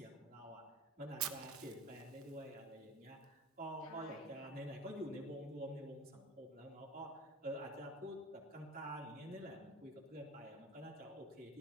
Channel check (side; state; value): both; normal; correlation 0.35